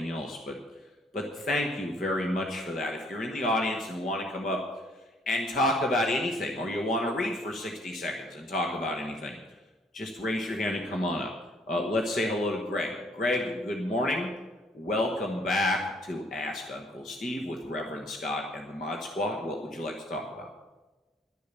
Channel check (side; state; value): both; normal; correlation 0.63